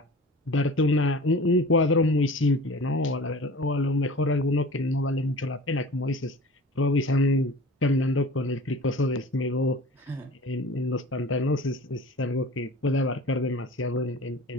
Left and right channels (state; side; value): normal; both; correlation 0.41